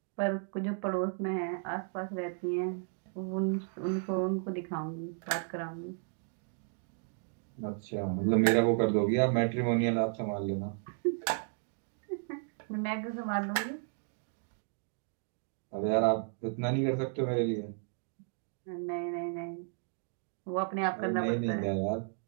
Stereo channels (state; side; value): silent; left; 55 dB below the other